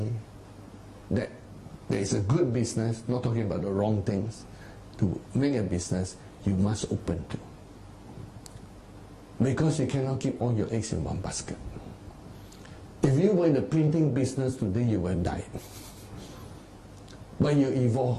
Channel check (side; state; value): both; identical; correlation 1.00